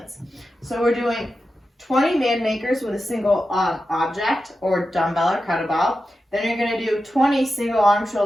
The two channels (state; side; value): normal; both; correlation 0.91